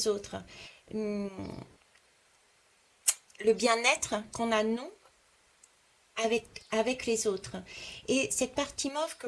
autres. Hum, le bien-être qu'on a nous avec les autres. Et cette partie mauve que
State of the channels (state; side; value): identical; both; correlation 1.00